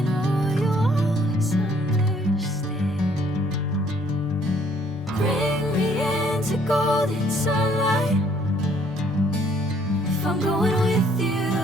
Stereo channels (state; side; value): normal; both; correlation 0.63